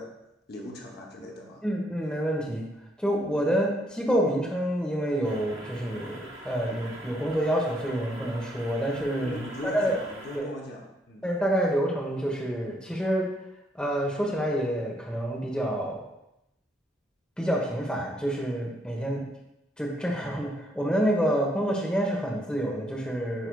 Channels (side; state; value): both; normal; correlation 0.72